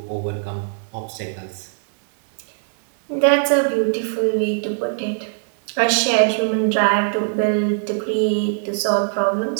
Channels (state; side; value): silent; left; digital silence